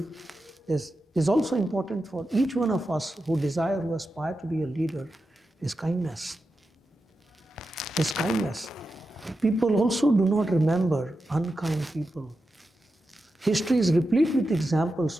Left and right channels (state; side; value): normal; both; correlation 0.90